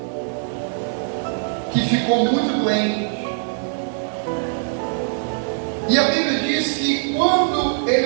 que ficou muito doente. E a Bíblia diz que quando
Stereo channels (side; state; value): left; silent; digital silence